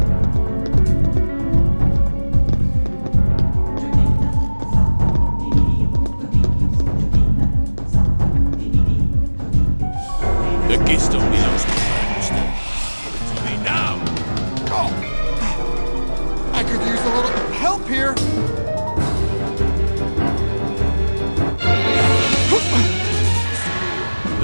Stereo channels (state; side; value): inverted; both; correlation -1.00